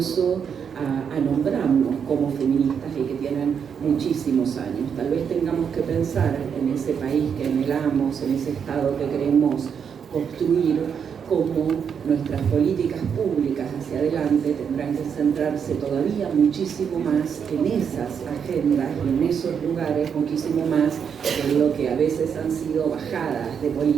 a nombrarnos como feministas y que tienen muchísimos años. Tal vez tengamos que pensar en ese país que anhelamos, en ese Estado que queremos construir, cómo nuestras políticas públicas hacia adelante tendrán que centrarse todavía muchísimo más en esas agendas y en esos lugares, muchísimo más en lo que a veces han sido bajadas de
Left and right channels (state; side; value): quieter; left; 7.2 dB